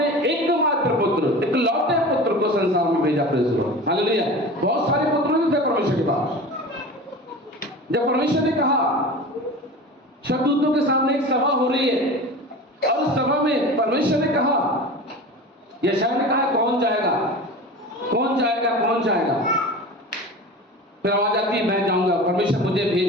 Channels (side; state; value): both; normal; correlation 0.34